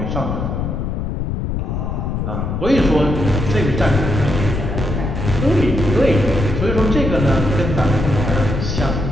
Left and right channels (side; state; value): left; noise; rumble, 2 dB below the sound